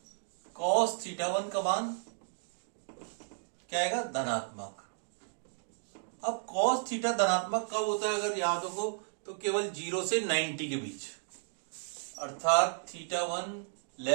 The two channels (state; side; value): silent; left; digital silence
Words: cos थीटा 1 का मान क्या आएगा? धनात्मक। अब cos थीटा धनात्मक कब होता है अगर याद हो तो केवल 0 से 90 के बीच, अर्थात थीटा 1